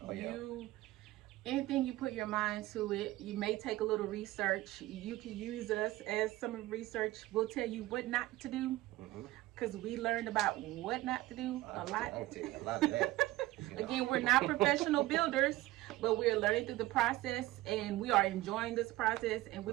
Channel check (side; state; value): left; quieter; 17.8 dB